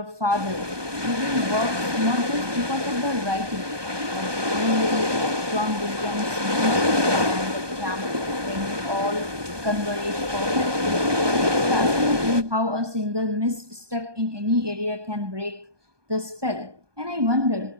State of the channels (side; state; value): left; late; 1.2 ms